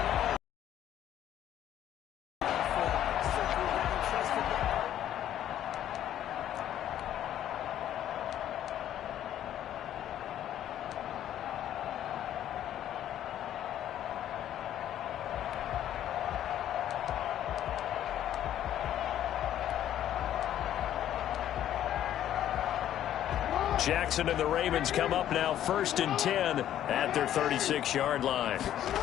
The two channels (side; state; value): right; quieter; 11.4 dB